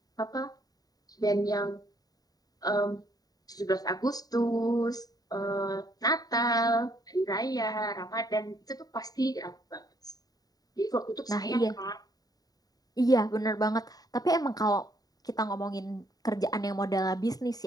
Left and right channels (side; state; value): right; late; 0.18 ms